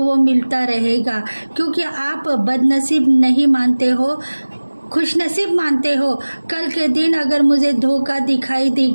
वो मिलता रहेगा, क्योंकि आप बदनसीब नहीं मानते हो, खुशनसीब मानते हो। कल के दिन अगर मुझे धोखा दिखाई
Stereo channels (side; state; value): both; inverted; correlation -1.00